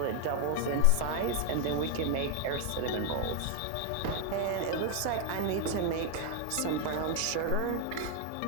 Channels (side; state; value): both; different; correlation 0.00